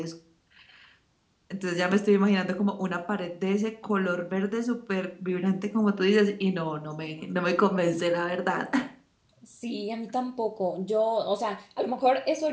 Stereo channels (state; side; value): identical; both; correlation 1.00